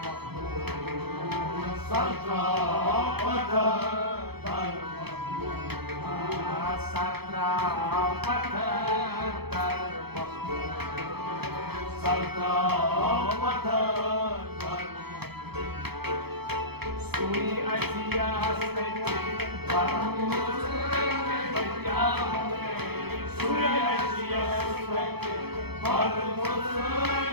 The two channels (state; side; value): late; left; 0.97 ms